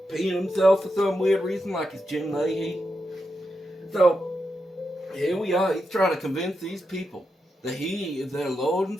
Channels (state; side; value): normal; both; correlation 0.86